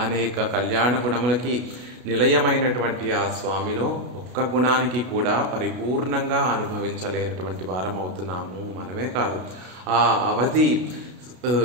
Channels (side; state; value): left; late; 32 ms